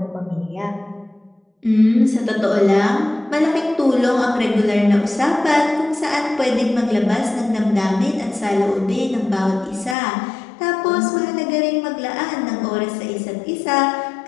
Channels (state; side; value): drops out; right; at 10.0 s